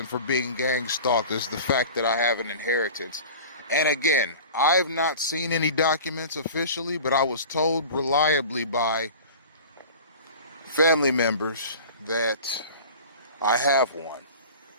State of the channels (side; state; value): both; inverted; correlation -0.38